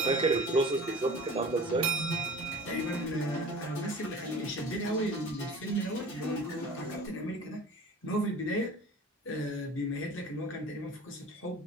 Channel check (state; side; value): normal; both; correlation 0.41